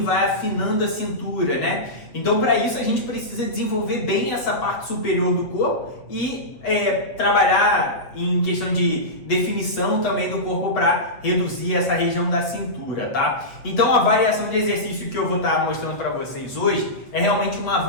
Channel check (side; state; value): right; late; 8.1 ms